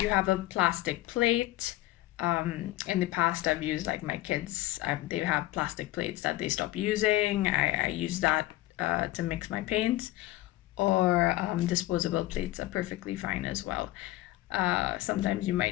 you have a plastic plate, in the past I've used like my kids, they have plastic plates that they stop using. I use that to mix my paints, or disposable plates are perfectly fine as well. Sometimes you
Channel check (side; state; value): right; quieter; 16.8 dB